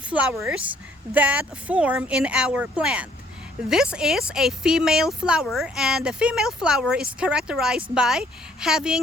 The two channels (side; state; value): both; normal; correlation 0.62